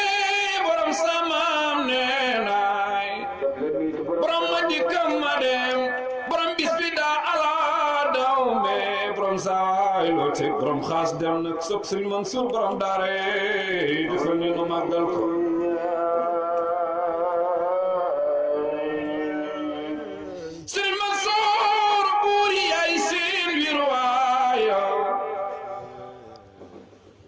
borom samaam nee naay borom ma dikkam ma dem borom bis bi daa ala daw me borom saay loo teg borom xaas dem nag sopp Serigne Mansour borom daare defal ñu nu màggal ko Serigne Mansour buur yaay seen wirwaaya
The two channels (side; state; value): both; identical; correlation 1.00